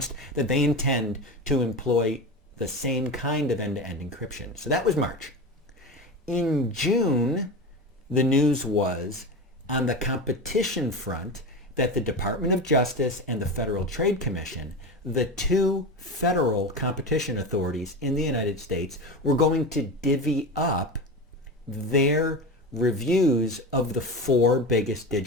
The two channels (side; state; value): both; normal; correlation 0.24